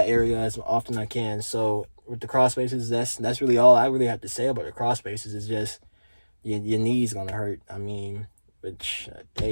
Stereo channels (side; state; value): both; inverted; correlation -1.00